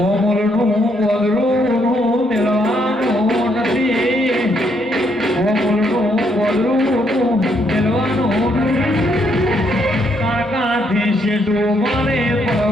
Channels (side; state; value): both; normal; correlation 0.73